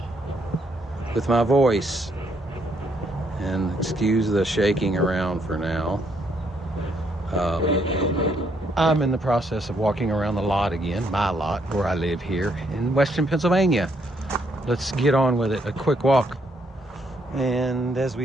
with my voice. And excuse the shaking around for now. I'm in the process of walking around the lot again, my lot, where I live here in Western Pennsylvania. Let's get on with it, a quick walk. And as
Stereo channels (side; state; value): both; normal; correlation 0.72